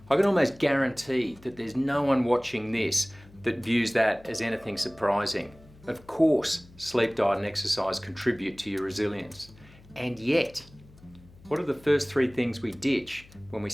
I can almost guarantee that there's no one watching this that views that as anything surprising. Of course, sleep, diet, and exercise contribute to your resilience. And yet, what are the first three things we ditch when we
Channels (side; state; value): left; noise; hum, 24 dB below the sound